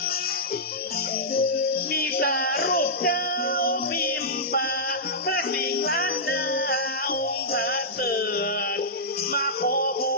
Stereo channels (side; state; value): both; normal; correlation -0.13